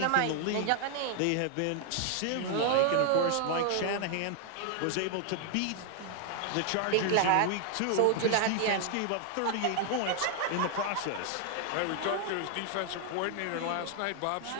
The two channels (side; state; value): both; different; correlation 0.00